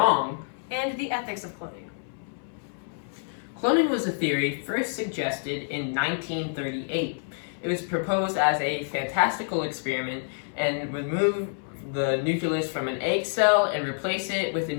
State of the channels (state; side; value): silent; right; 60 dB below the other